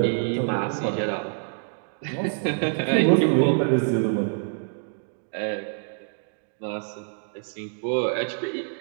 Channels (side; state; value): left; silent; digital silence